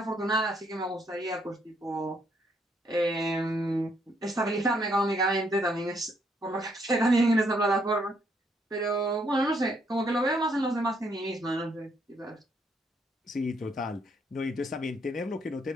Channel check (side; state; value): both; normal; correlation 0.72